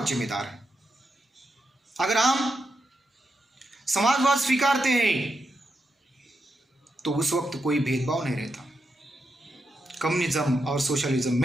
जिम्मेदार है। अगर हम समाजवाद स्वीकारते हैं तो उस वक्त कोई भेदभाव नहीं रहता। कम्युनिज्म और सोशलिज्म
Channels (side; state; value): both; normal; correlation 0.85